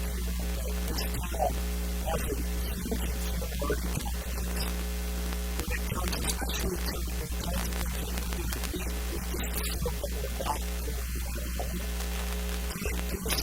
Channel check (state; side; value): identical; both; correlation 1.00